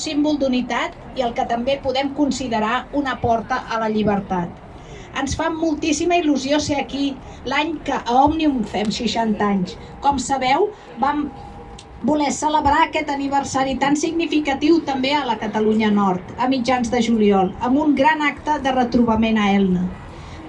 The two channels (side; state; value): both; identical; correlation 1.00